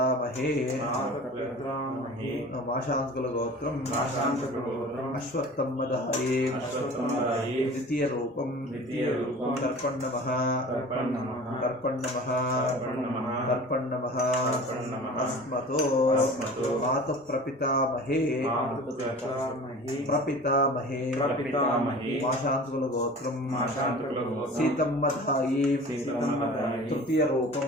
మాశాంతకుల గోత్రం అశ్వత్థమ్మదాయే ద్వితీయ రూపం తర్పణవః అస్మతో మాతః ప్రపితామహే మాశాంతకుల గోత్రం సీతమ్మదాయే తృతీయ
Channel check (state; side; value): normal; both; correlation 0.40